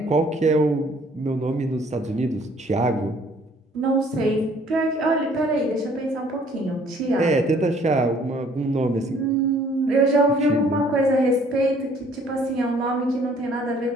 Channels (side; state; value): both; normal; correlation 0.59